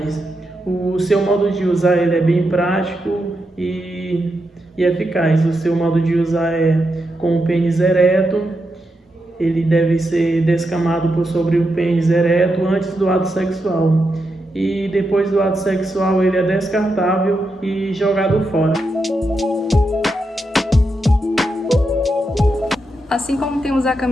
O seu modo de usar ele é bem prático e eficaz. O seu modo de usar é com o pênis ereto. Ele deve ser descamado por sobre o pênis ereto antes do ato sexual. E depois do ato sexual ele é descartável e jogado fora. Assim como temos a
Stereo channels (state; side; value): normal; both; correlation 0.85